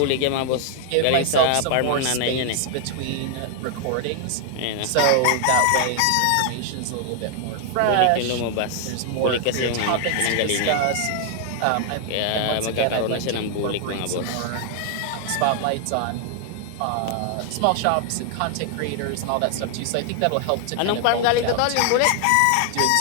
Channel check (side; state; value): both; different; correlation 0.00